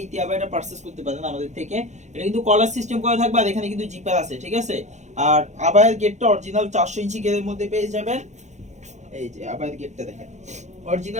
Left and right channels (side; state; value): left; late; 0.34 ms